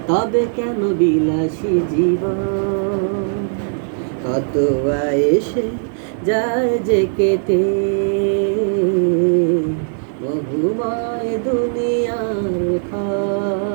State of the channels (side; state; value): left; silent; 60 dB below the other